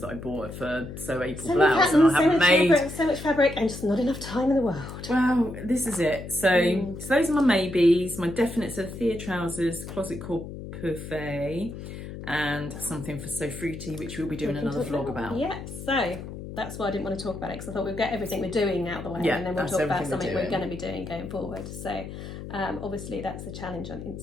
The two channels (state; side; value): noise; left; hum, 10 dB below the sound